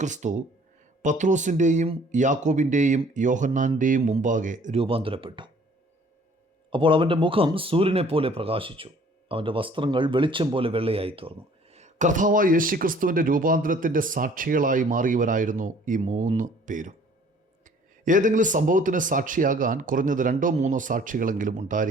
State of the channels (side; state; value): both; normal; correlation 0.55